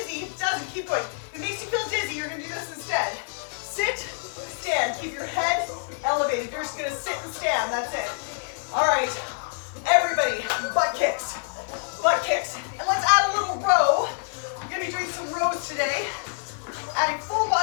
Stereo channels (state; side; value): silent; right; 61 dB below the other